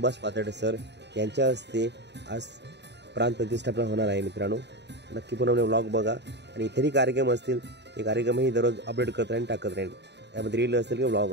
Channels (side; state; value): left; late; 0.50 ms